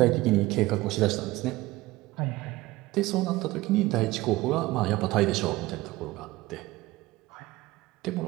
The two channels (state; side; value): quieter; left; 19.0 dB